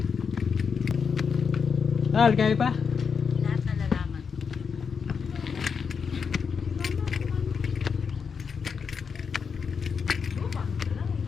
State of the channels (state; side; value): quieter; right; 6.1 dB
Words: Kaya pa? Lahat na lalaman.